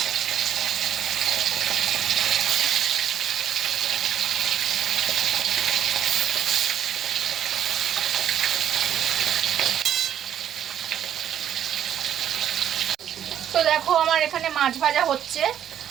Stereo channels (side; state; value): left; quieter; 10.1 dB